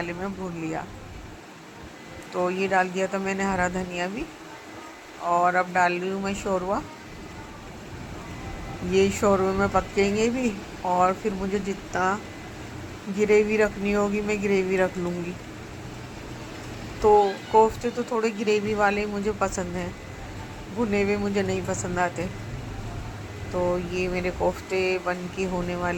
में भून लिया। तो ये डाल दिया था मैंने हरा धनिया भी। और अब डाल रही हूँ मैं शोरवा। ये शोरवे में पकेंगे भी, और फिर मुझे जितना ग्रेवी रखनी होगी मैं ग्रेवी रख लूँगी। तो कोफ्ते तो थोड़े ग्रेवी वाले मुझे पसंद हैं, भुने हुए मुझे नहीं पसंद आते। तो ये मेरे कोफ्ते बन के होने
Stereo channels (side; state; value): both; identical; correlation 1.00